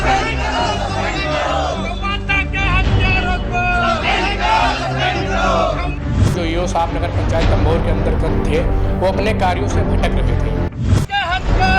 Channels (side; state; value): both; identical; correlation 1.00